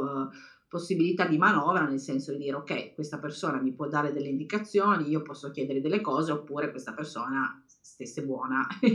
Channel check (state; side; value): identical; both; correlation 1.00